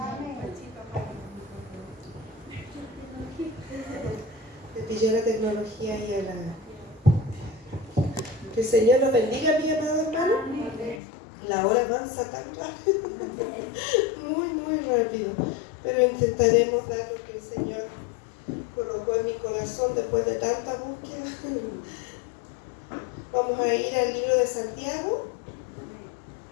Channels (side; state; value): right; drops out; at 11.0 s